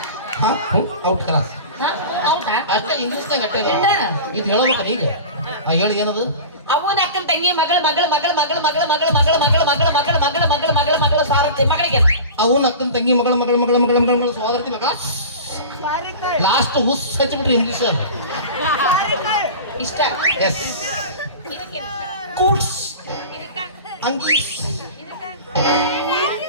ಔಟ್ ಕ್ಲಾಸ್ ಹೌದಾ ಅಷ್ಟ ಇಂಗ್ಲೀಷ್ನಾಗ ಅಟ್ಟೆ ಇದು ಹೇಳ್ಬೇಕಲ್ಲ ಈಗ ಹೇಳಿ ಏನದು ಅವನ ಅಕ್ಕನ ತಂಗಿ ಮಗಳು ಮಗಳು ಮಗಳು ಮಗಳು ಮಗಳು ಮಗಳು ಮಗಳು ಮಗಳು ಮಗಳು ಮಗಳು ಮಗಳು ಮಗಳು ಮಗಳು ಮಗಳು ಸಾರಥಿ ಮಗಳಿಗೆ ಅವನ ಅಕ್ಕನ ತಂಗಿ ಮಗಳು ಮಗಳು ಮಗಳು ಮಗಳು ಮಗಳು ಮಗಳು ಸೋದರತಿ ಮಗ ಲಾಸ್ಟ್ ಹುಸ್ ಹಚ್ಚಿಬಿಟ್ರಿ ಇಂಗ್ಲೀಷ್ ಇಷ್ಟ ಎಸ್ ಕೂಡ್ಸ್ ಅಂಗೀಸ್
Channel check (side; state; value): both; inverted; correlation -0.34